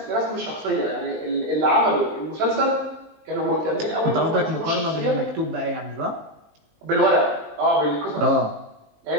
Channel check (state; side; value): late; left; 19 ms